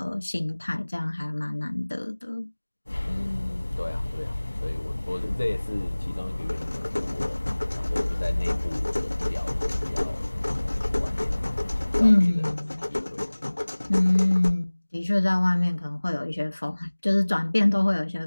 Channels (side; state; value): both; inverted; correlation -1.00